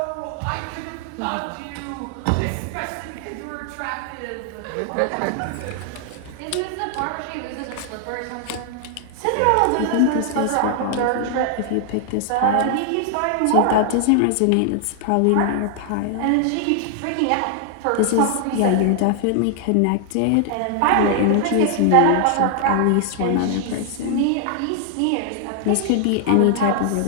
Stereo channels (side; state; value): both; different; correlation 0.00